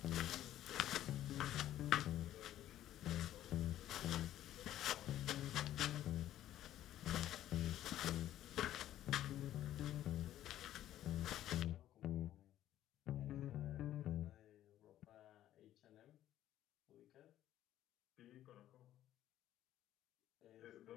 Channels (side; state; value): right; quieter; 12.7 dB